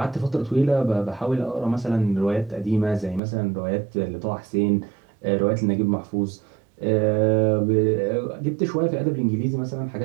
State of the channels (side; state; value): left; drops out; at 3.2 s